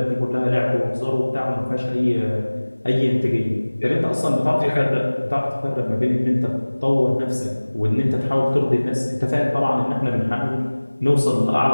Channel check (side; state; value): both; inverted; correlation -1.00